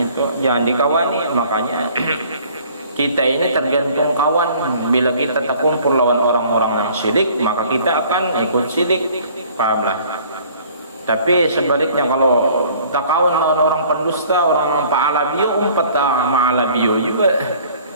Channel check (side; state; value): both; inverted; correlation -0.53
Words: jangan dikawani. Makanya kita ini tergantung kawan. Bila kita terkumpul lawan orang-orang yang syirik, maka kita akan ikut syirik, pahamlah. Tapi sebaliknya, kalau tak kawan lawan orang pendusta, orang pa'alabiyo, umpat ma'alabiyo juga,